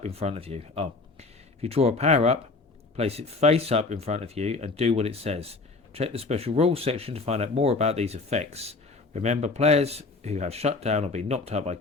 in front of you. If you draw a power up, place it face up in front of you and do what it says. Check the special rules section to find out more about these effects. Remember, players who have shut down or been knocked out by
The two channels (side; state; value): right; quieter; 3.7 dB